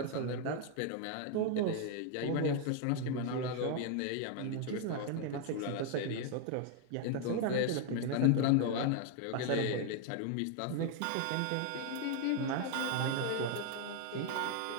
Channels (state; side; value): different; both; correlation 0.00